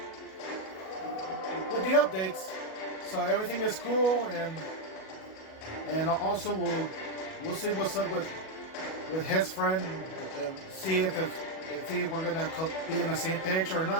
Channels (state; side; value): late; right; 37 ms